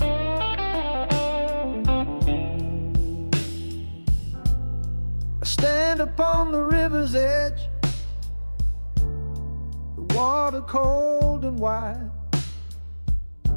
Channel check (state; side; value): inverted; both; correlation -1.00